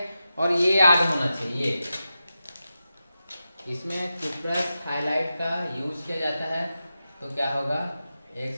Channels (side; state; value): both; inverted; correlation -0.91